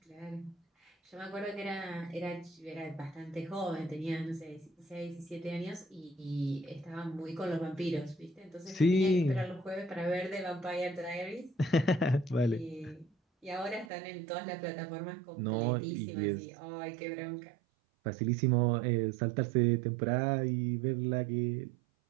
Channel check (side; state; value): left; drops out; at 13.9 s